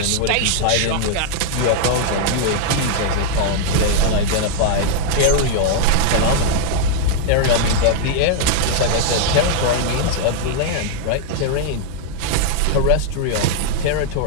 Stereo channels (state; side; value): different; both; correlation -0.01